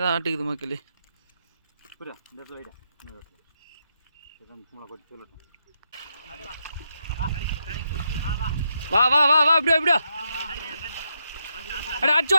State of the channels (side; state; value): both; inverted; correlation -0.81